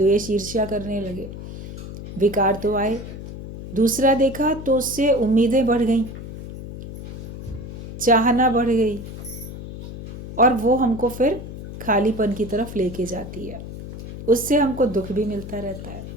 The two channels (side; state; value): left; noise; hum, 11 dB below the sound